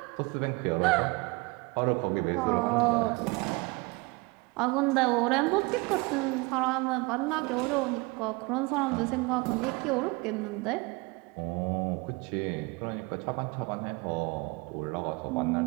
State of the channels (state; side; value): quieter; left; 26.6 dB